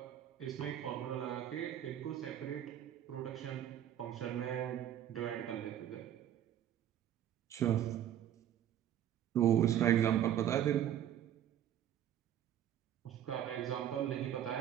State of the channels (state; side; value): quieter; left; 10.9 dB